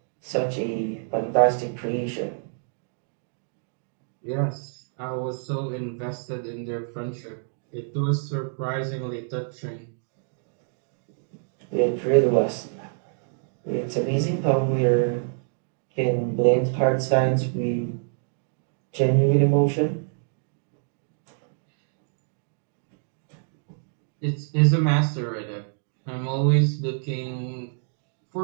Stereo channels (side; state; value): left; silent; 60 dB below the other